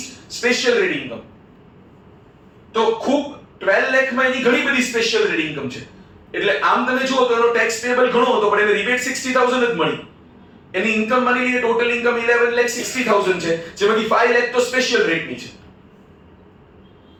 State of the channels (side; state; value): both; identical; correlation 1.00